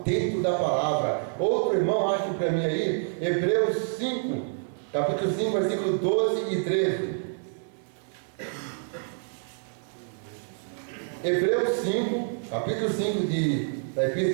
dentro da palavra. Outro irmão, acho para mim aí, Hebreus 5, capítulo 5, versículo 12 e 13. Hebreus 5, capítulo 5 da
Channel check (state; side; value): silent; left; digital silence